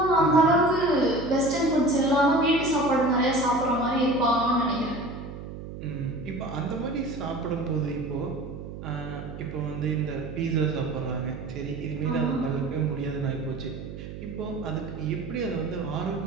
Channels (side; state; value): right; noise; hum, 11 dB below the sound